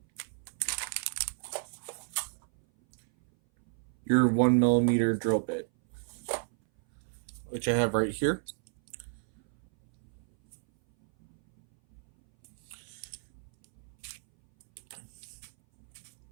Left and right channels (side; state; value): left; silent; 56 dB below the other